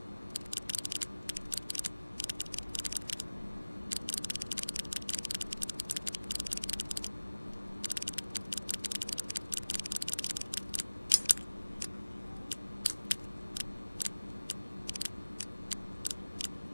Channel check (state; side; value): inverted; both; correlation -1.00